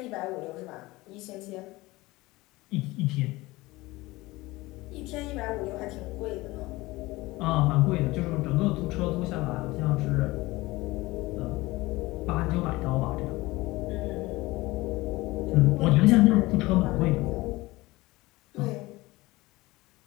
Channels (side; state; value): right; quieter; 20.5 dB